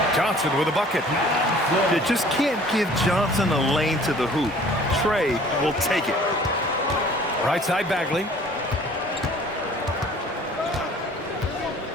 Johnson with a bucket. You just can't give Johnson a lane to the hoop. Trey will take it. Right side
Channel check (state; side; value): normal; both; correlation 0.51